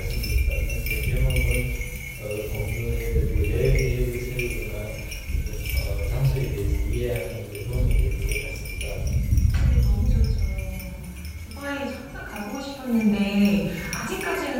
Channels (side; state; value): both; identical; correlation 1.00